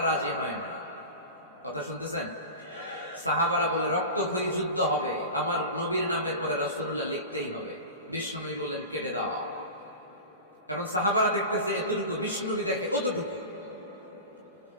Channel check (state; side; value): inverted; both; correlation -0.31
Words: রাজি হয় না। কথা শুনতেছেন? সাহাবারা বলে রক্তক্ষয়ী যুদ্ধ হবে, আমার নবীর নামের পরে রাসূলুল্লাহ লিখতেই হবে। বিশ্বনবী বললেন, কেটে দাও। কারণ সাহাবারা দেখতেছে এতটুকু, বিশ্বনবী দেখে অতটুকু।